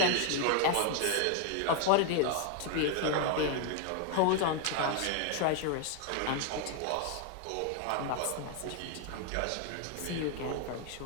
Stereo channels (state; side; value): different; both; correlation 0.01